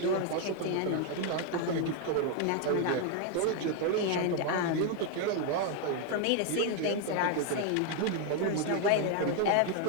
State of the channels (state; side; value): different; both; correlation 0.01